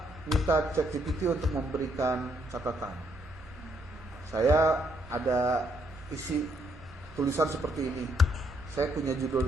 minta ChatGPT untuk memberikan catatan. Saya ada isi tulisan seperti ini. Saya punya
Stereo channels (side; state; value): both; normal; correlation 0.73